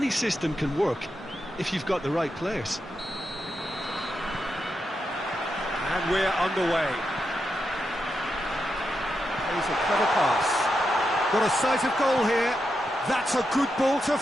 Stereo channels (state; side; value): normal; both; correlation 0.86